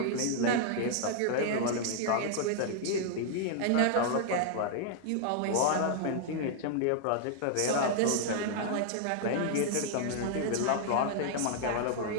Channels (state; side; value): different; both; correlation -0.01